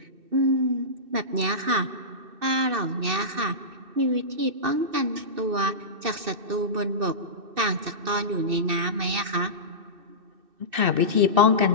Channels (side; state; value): left; late; 2.6 ms